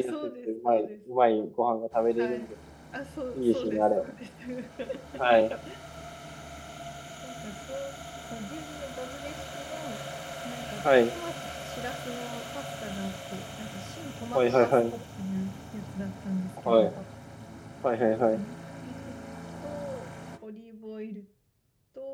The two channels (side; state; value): both; identical; correlation 1.00